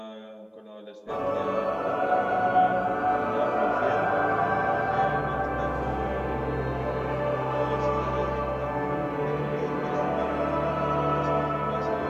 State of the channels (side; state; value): both; identical; correlation 1.00